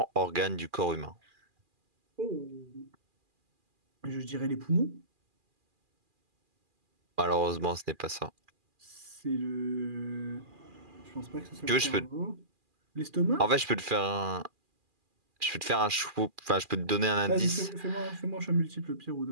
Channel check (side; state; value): left; late; 2.4 ms